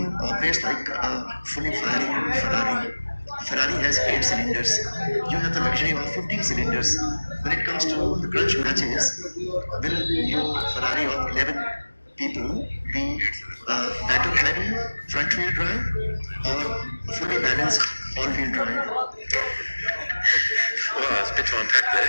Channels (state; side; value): inverted; both; correlation -1.00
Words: operates like a fully firing Ferrari. Ferrari has 8 cylinders. You have the luxury of 15 cylinders. When it comes to the crunch matches, will your Ferrari of 11 people be battle heavy, front wheel drive, or fully balanced all wheel drive? Well, it's a bit to unpack there.